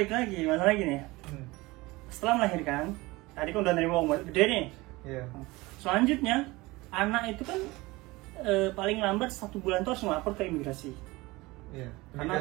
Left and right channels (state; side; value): quieter; left; 21.6 dB